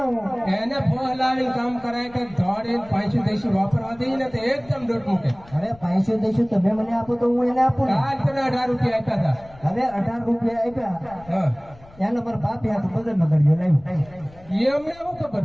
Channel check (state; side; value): noise; left; rumble, 24 dB below the sound